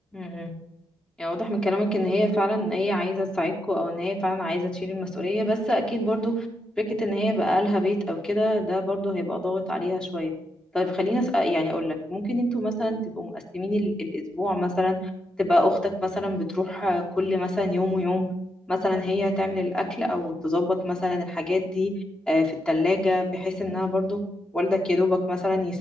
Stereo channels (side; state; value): both; normal; correlation 0.83